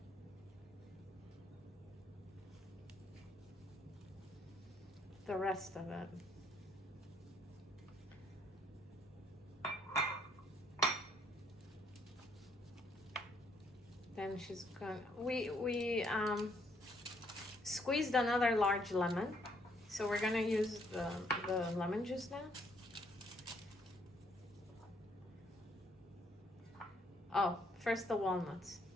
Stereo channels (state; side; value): normal; both; correlation 0.69